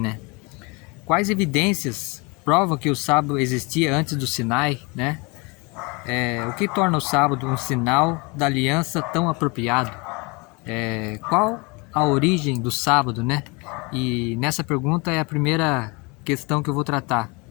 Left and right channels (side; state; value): right; quieter; 28.6 dB